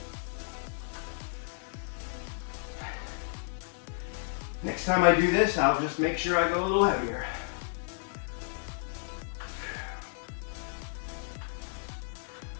Next time I do this, I'll just make sure I go a little heavier.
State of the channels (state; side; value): silent; right; digital silence